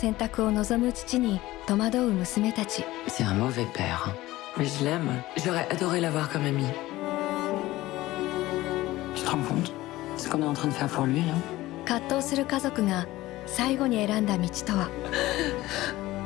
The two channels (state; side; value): quieter; right; 17.4 dB